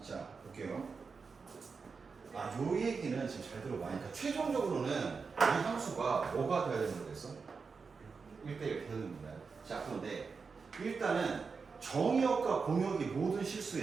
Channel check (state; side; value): quieter; left; 5.0 dB